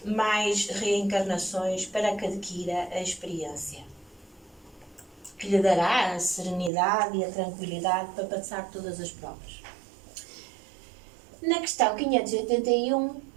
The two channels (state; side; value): drops out; left; at 6.7 s